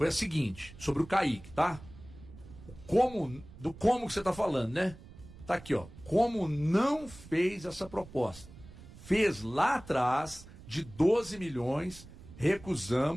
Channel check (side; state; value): right; noise; rumble, 18 dB below the sound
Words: a seguinte, sobre o Kaique, tá? Como que você está falando, né? Tá aqui, como não fez essa proposta. Fez lá atrás de 12 milhões,